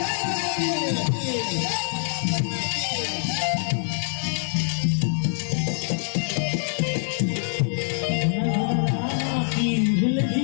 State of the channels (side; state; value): right; silent; digital silence